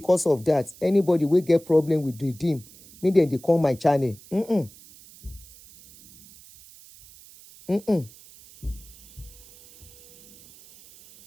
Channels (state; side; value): noise; right; hiss, 22 dB below the sound